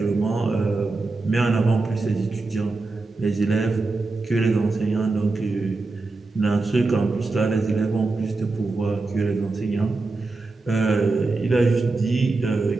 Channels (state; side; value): quieter; left; 3.5 dB